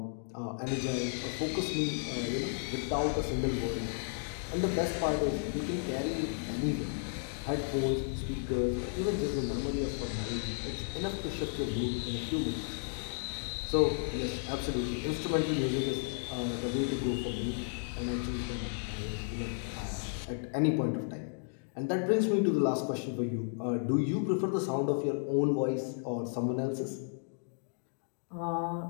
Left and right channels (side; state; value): right; silent; digital silence